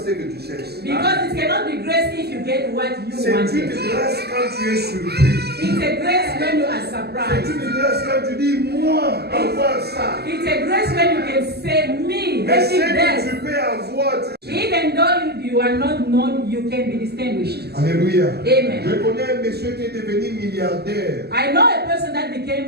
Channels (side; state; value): left; late; 0.47 ms